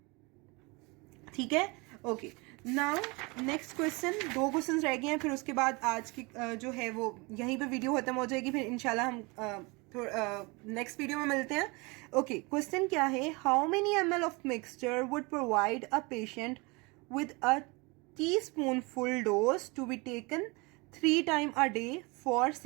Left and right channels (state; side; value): quieter; left; 27.1 dB